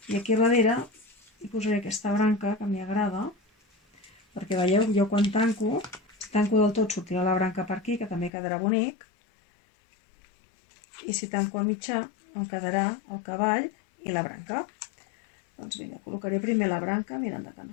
i aquí darrere hi posaré aquesta branca que m'hi agrada, perquè veieu, jo quan tanco, si tanco del tot sortirà la branca per aquí, que també quedarà bonic, i si tanco a mitjà em quedarà el cavall i la branca. Doncs vinga, col·locaré primer la branca, mirant que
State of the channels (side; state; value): right; drops out; at 8.3 s